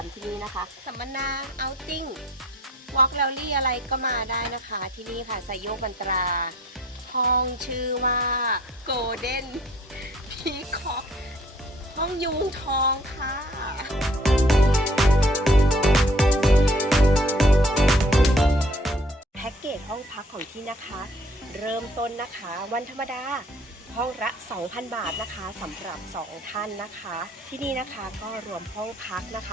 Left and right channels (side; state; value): both; normal; correlation 0.56